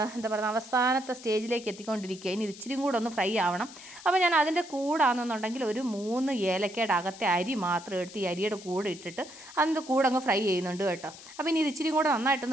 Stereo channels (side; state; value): left; noise; hiss, 17 dB below the sound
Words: എന്താ പറയുക അവസാനത്തെ സ്റ്റേജിലേക്ക് എത്തിക്കൊണ്ടിരിക്കുക. ഇനി ഇത് ഇച്ചിരി കൂടെ ഒന്ന് ഫ്രൈ ആവണം. അപ്പോൾ ഞാൻ അതിൻ്റെ കൂടാണെന്നുണ്ടെങ്കിൽ ഒരു 3 ഏലക്കയുടെ അകത്തെ അരി മാത്രം എടുത്ത് ഈ അരിയുടെ കൂടെ ഇട്ടിട്ട് അതിൻ്റെ കൂടെ അങ്ങ് ഫ്രൈ ചെയ്യുന്നുണ്ട് കേട്ടോ. അപ്പോൾ ഇനി ഇത് ഇച്ചിരി കൂടെ